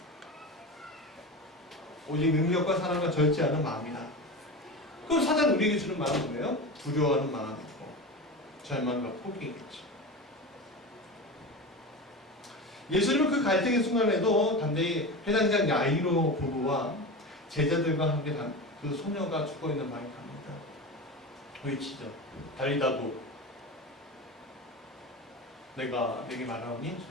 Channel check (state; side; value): normal; both; correlation 0.26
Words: 오직 능력과 사랑과 절제하는 마음이다. 그럼 사단이 우리에게 주는 마음은 뭐예요? 두려워하는 마음이고 절망과 포기겠죠. 예수님은 그 갈등의 순간에도 담대히 회당장 야이로 부부와 제자들과 함께 그 소녀가 죽어있는 방에 갑니다. 외치죠. 달리다도 내가 내게 말하오니